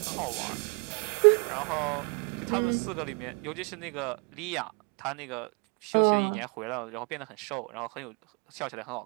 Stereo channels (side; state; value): left; quieter; 34.9 dB